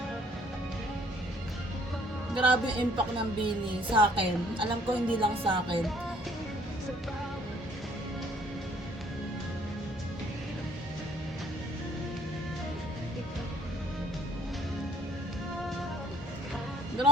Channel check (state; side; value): normal; both; correlation 0.60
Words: Grabe yung impact ng Bini sa akin. Alam ko hindi lang sa akin.